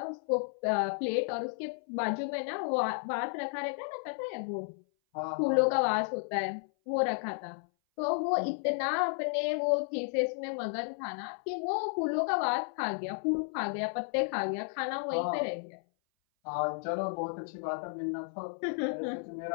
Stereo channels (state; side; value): silent; right; 56 dB below the other